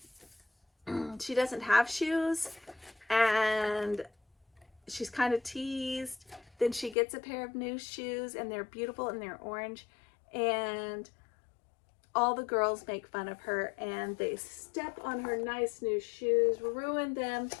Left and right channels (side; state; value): right; drops out; at 7.0 s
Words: have shoes, and she's kind of teased. Then she gets a pair of new shoes, and they're beautiful and they're orange, and all the girls make fun of her, and they step on her nice new shoes, ruin them,